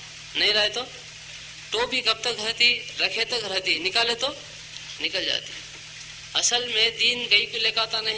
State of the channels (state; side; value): identical; both; correlation 1.00